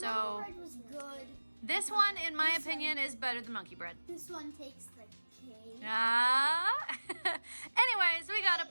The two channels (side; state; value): both; inverted; correlation -1.00